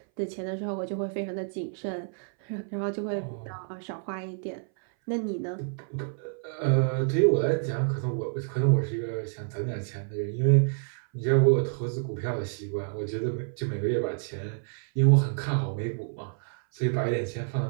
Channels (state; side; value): silent; left; 59 dB below the other